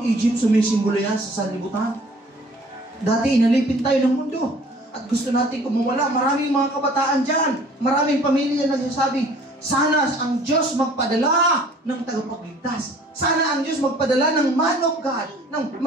Egypt, sumisimbolo yan sa sanlibutan. Dati inalipin tayo ng mundo at gusto natin kumawala. Maraming mga kabataan dyan, maraming pamilya nagsasabi, sana ang Diyos magpadala ng tagapagligtas. Sana ang Diyos magpadala ng man of God,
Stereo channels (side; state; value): both; normal; correlation 0.52